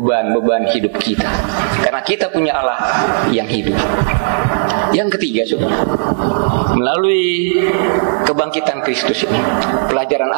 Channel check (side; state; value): left; silent; digital silence